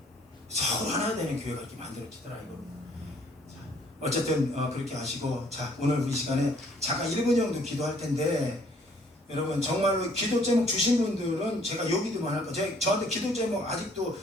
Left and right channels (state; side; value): normal; both; correlation 0.61